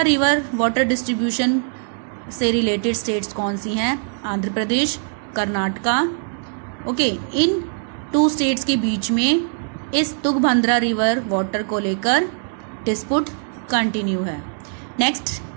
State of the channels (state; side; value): silent; left; 62 dB below the other